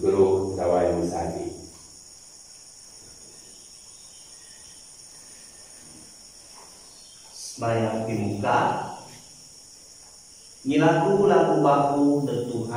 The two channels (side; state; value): both; identical; correlation 1.00